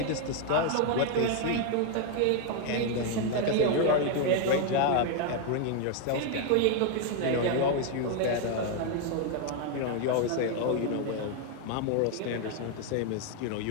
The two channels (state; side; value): different; both; correlation 0.00